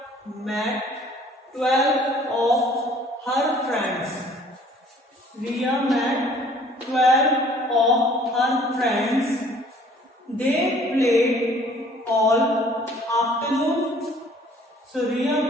met 12 of her friends. Riya met 12 of her friends. They played all afternoon. So Riya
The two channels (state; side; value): normal; both; correlation 0.55